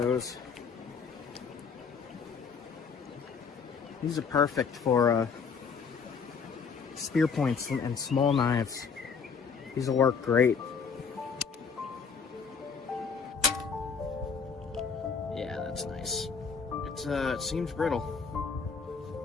These are perfect for spear points and small knives. These will work great. Yeah, that's nice. It's it seems brittle.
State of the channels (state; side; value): quieter; right; 5.8 dB